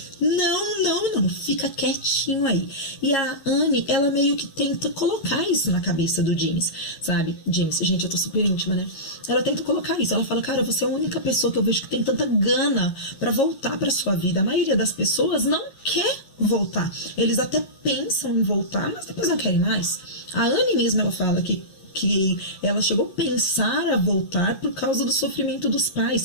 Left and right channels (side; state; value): right; late; 11 ms